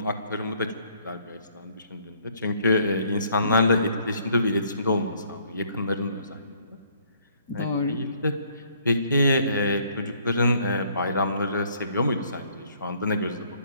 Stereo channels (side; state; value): both; inverted; correlation -0.63